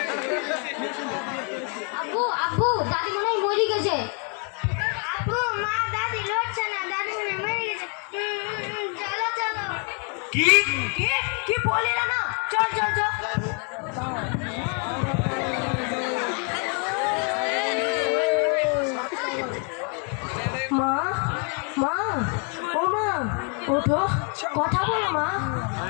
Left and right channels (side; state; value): right; quieter; 39.2 dB